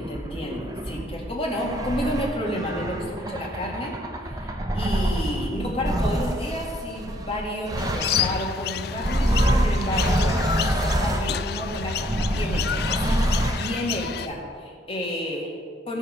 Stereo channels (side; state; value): both; normal; correlation 0.65